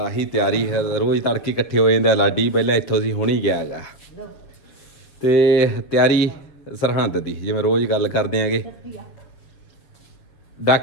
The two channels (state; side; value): late; right; 7.3 ms